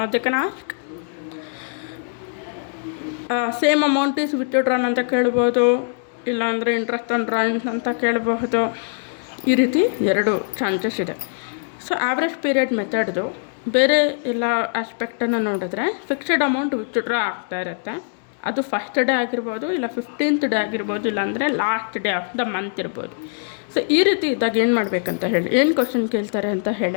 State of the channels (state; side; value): silent; right; digital silence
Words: they can ask same amount is withdrawn ಅಂತ ಕೇಳ್ಬೋದು, ಇಲ್ಲಾಂದರೆ ಇಂಟ್ರೆಸ್ಟ್ ಆನ್ ಡ್ರಾಯಿಂಗ್ಸ್ ಅಂತ ಕೇಳಬಹುದು. ಈ ರೀತಿ 2 ಚಾನ್ಸಸ್ ಇದೆ. ಸೊ ಆವ್ರೇಜ್ ಪೀರಿಯಡ್ ಮೆಥಡ್ದು ಬೇರೆ ಎಲ್ಲ ಆಸ್ಪೆಕ್ಟನ್ನು ನೋಡಿದ್ರೆ ಫಿಕ್ಸ್ಡ್ ಅಮೌಂಟ್ ವಿತ್ಡ್ರಾ ಆಗ್ತಾ ಇರುತ್ತೆ. ಅದು ಫಸ್ಟ್ ಡೇ ಆಗಿರ್ಬೋದು, ಇಲ್ಲ 15th ಡೇ ಆಗಿರ್ಬೋದು, ಇಲ್ಲಾಂದರೆ last day of the month ಇರ್ಬೋದು. ಸೊ ಈ ರೀತಿ ಇದ್ದಾಗ ಏನು ಮಾಡಬೇಕಂತ ಹೇಳಿ, ಏನು ಕ್ವಶನ್ ಕೇಳ್ತಾರೆ ಅಂತ